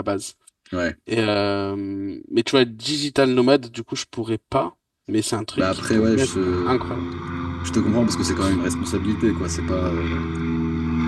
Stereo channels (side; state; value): both; identical; correlation 1.00